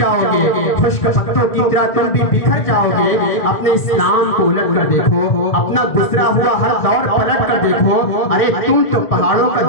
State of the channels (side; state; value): right; late; 1.9 ms